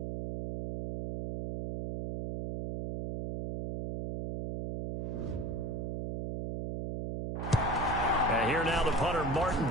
And here now the punter,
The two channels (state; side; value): noise; right; hum, 4 dB below the sound